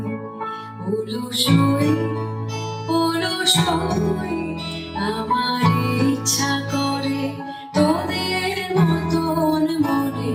অলসই অলসই আমার ইচ্ছা করে তোদের মতন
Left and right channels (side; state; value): both; identical; correlation 1.00